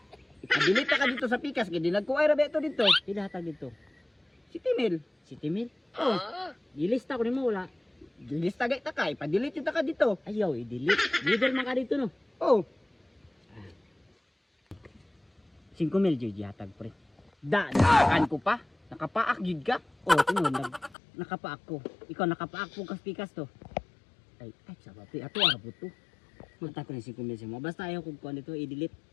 Ipadilita ka dito sa pikas kay dinad ko ay rabe to dito. Pila hatag dito? City Mill. City Mill. Oh, Ilista ko nimo wala. gilista gay ta kay padilit ta ka dito. Ayaw i-delete. Leader man ka dito no. Oh, 5,000 jud hatag pre. daan ko pa. Nakapaak gid ka. Oh, tingon nakapaak ko. Ikaw nakapaak po kas pikas to. Ay sabi pre ato ara po to. Mata ko ni 5,000 mo. Basta ayaw ko kuan dito i-delete.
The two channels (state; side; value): drops out; right; at 21.0 s